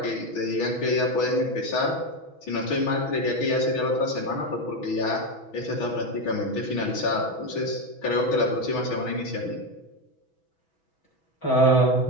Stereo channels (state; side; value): late; right; 6.1 ms